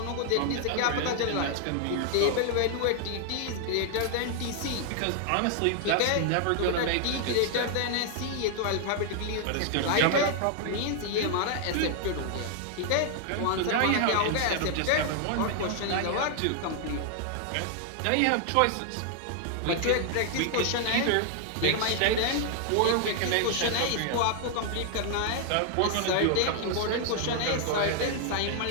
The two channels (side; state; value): both; different; correlation 0.00